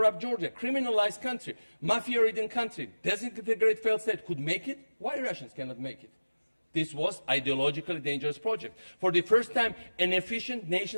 Georgia, criminalized country, mafia-ridden country, disintegrated failed state could make it, why Russians cannot make it? This was an ideologically dangerous project. For the first time, an efficient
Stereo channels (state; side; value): inverted; both; correlation -1.00